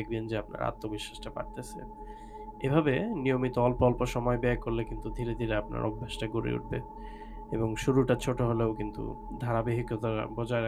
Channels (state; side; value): identical; both; correlation 1.00